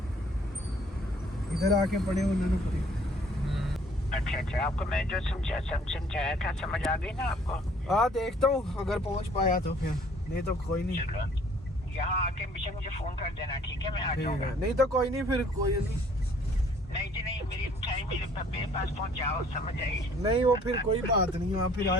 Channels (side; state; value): both; normal; correlation 0.58